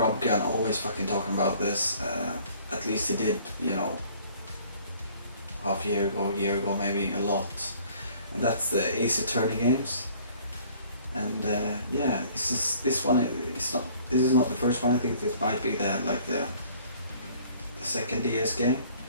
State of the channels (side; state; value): both; inverted; correlation -0.55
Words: always fucking talking about this. At least he did, you know, half a year ago maybe, a lot. And that's the Ace Attorney games. And yeah, this one is not. This is not the first one. I think this might be the second DS game.